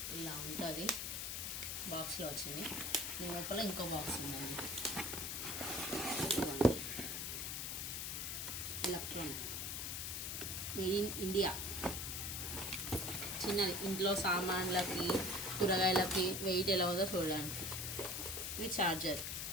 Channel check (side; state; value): left; noise; hiss, 3 dB below the sound